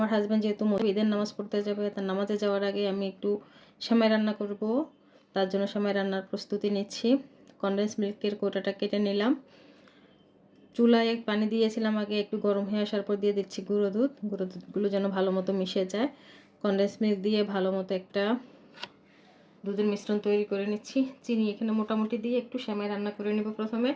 হাজব্যান্ড যেহেতু ঈদের নামাজ পড়তে যাবে, তার নামাজে যাওয়ার আগে আমি একটু সেমাই রান্না করব। তার জন্য সেমাই রান্নার প্রস্তুতি নিচ্ছি। কনডেন্স মিল্কের কোটাটা কেটে নিলাম। চুলায় পানি দিয়েছিলাম আগে, একটু গরম হয়ে আসার পর দিয়ে দিচ্ছি গুঁড়ো দুধগুলো যেন ভালো মতো মিশে যায়। কনডেন্স মিল্ক দিয়ে ভালো মতো একটা দুধের মিশ্রণ তৈরি করে নিচ্ছি। চিনি এখানে মোটামুটি দিয়ে একটু সেমাই রান্না করে নেব।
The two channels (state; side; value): identical; both; correlation 1.00